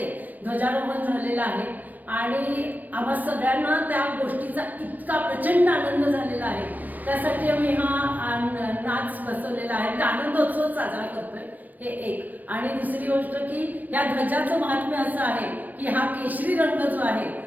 ध्वजारोहण झालेलं आहे आणि आम्हा सगळ्यांना त्या गोष्टीचा इतका प्रचंड आनंद झालेला आहे। त्यासाठी आम्ही हा नाच बसवलेला आहे, आनंदोत्सव साजरा करतोय। हे एक आणि दुसरी गोष्ट की या ध्वजाचं महात्म्य असं आहे की हा केशरी रंग जो आहे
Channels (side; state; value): left; late; 0.085 ms